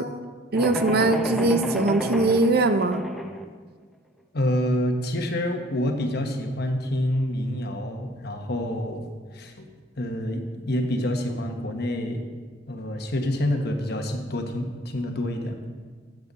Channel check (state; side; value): normal; both; correlation 0.54